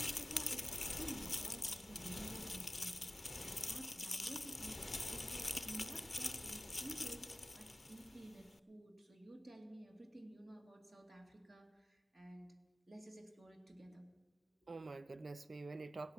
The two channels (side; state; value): both; normal; correlation 0.95